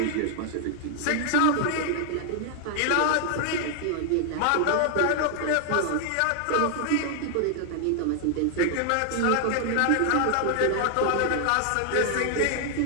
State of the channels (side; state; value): both; different; correlation 0.00